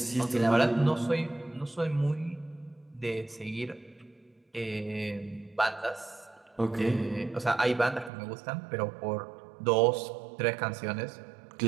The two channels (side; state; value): left; drops out; at 8.1 s